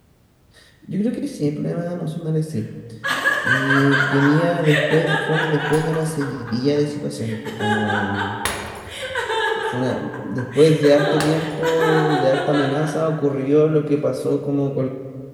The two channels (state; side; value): identical; both; correlation 1.00